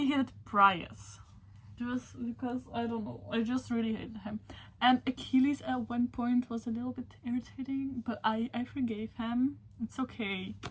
hated Prius. Just because, I don't know, I just really hated him. And Achilles at one point was a little bit irritating, but I forgave him. It's okay.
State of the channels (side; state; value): both; identical; correlation 1.00